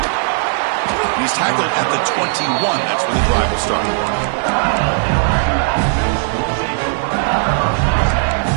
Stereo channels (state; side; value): silent; left; digital silence